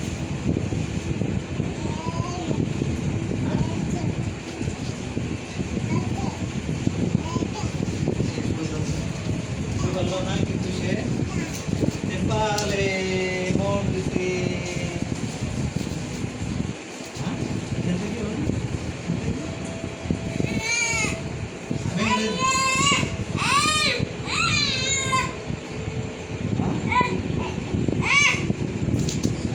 বললো না কিন্তু সে নেপালে মন দিছে।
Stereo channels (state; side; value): identical; both; correlation 1.00